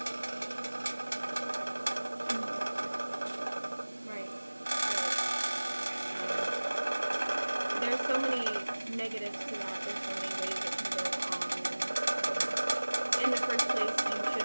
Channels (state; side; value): inverted; both; correlation -1.00